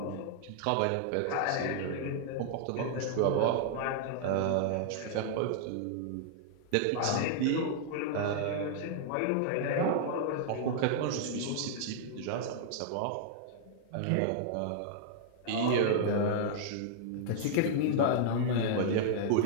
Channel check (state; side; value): different; both; correlation -0.01